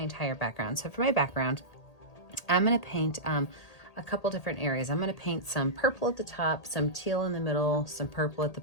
background. So for my background, I'm going to paint a couple different areas. I'm going to paint some purple at the top, some teal in the middle, some purple at the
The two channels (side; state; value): right; late; 1.8 ms